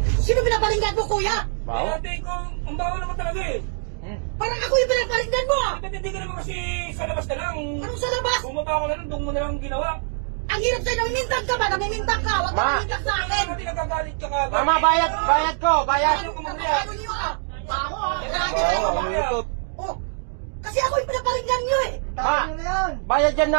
Sino pinaparinggan mo, kuya? Bawo? Ate ko, ang bawo naman talaga eh. Parang ako yung pinaparinggan mo, ah. Ba't hindi ka naman kasi sa labas na lang? Anong sa labas? Pumunta ka na lang, doon mo na lang ginawa. Ang hirap sa'yo, namimintang ka ba? Namimintang ka. Huwag ka namimintang sa akin. Hindi nagagalit ka kagad. Mama, bayad ko, bayad. Ano kung ano niyo, ah? Baho, ah. Grabe na yun. Oh, kasi ako yung pinaparinggan niyo, eh. Ma, bayad yan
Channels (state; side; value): silent; left; digital silence